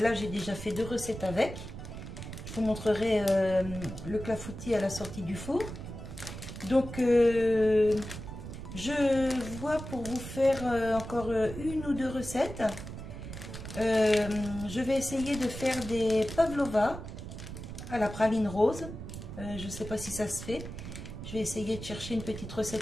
j'ai déjà fait 2 recettes avec. Je vous montrerai le clafoutis à la sortie du four. Donc, je vois pour vous faire encore 1 ou 2 recettes. Je vais essayer de faire des pavlova à la praline rose. Je ne sais pas si ça se fait. Je vais essayer de chercher une petite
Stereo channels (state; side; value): noise; right; rumble, 10 dB below the sound